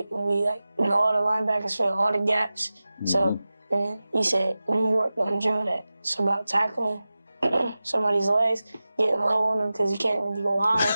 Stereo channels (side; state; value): both; inverted; correlation -0.96